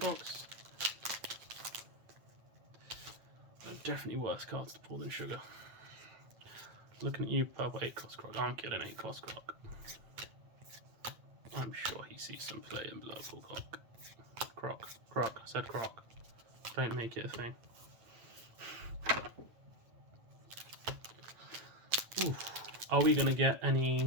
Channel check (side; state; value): left; late; 8.7 ms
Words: There are definitely worse cards to pull than sugar. Looking at you, purple 8-cost croc. I'm kidding, 8-cost croc. I'm sure he sees some play in purple croc. Croc. I said croc. Don't make it a thing. Ooh. Are we going to get any